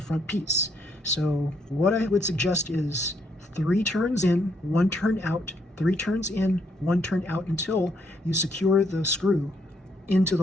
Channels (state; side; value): normal; both; correlation 0.73